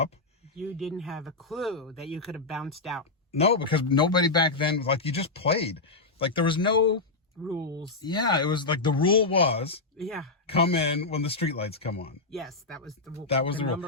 You didn't have a clue that you could have bounced out. No, because nobody back then, you just played. There was no rules. Yeah, it was the rule was come in when the streetlights come on. Yes, that was the rule. That was the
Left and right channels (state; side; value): quieter; right; 3.6 dB